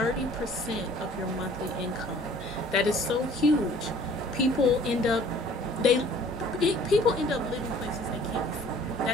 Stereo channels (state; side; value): normal; both; correlation 0.53